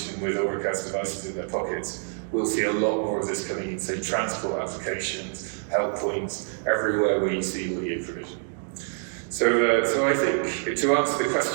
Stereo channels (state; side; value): silent; left; 61 dB below the other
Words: with Auracast devices in their pockets, we'll see a lot more of this coming in, say, transport applications, help points, everywhere where you see audio provision. So I think, to answer the